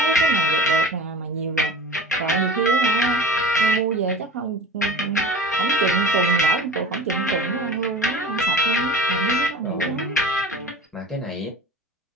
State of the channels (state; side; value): normal; both; correlation 0.37